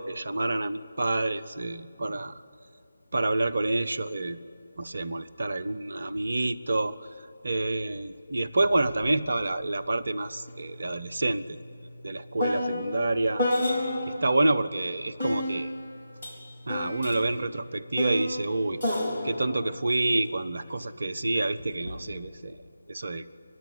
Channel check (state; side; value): inverted; both; correlation -0.93